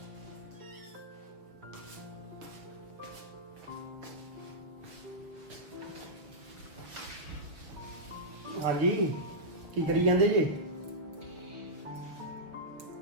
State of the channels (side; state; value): left; late; 6.3 ms